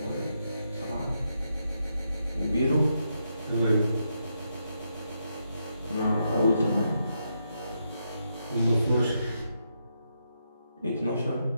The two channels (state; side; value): inverted; both; correlation -0.81